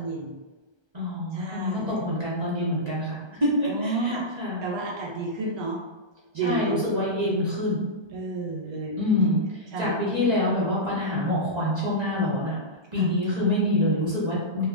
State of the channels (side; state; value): left; late; 1.3 ms